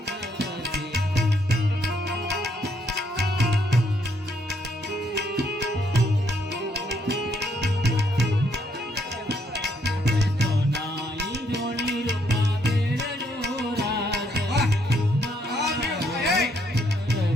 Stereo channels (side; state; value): both; normal; correlation 0.71